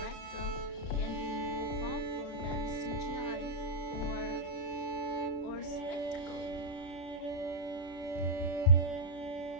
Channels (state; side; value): late; right; 31 ms